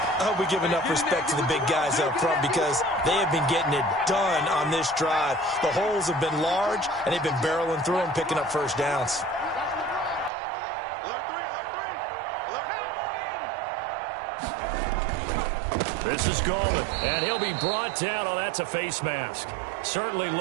hope we give enough respect to the big guys up front because they have been getting it done on this drive. The holes have been large, and they've been barreling through them, picking up first downs. This is Gallman, and he'll be brought down. Oh, that's a face mask. Certainly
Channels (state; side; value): drops out; left; at 10.3 s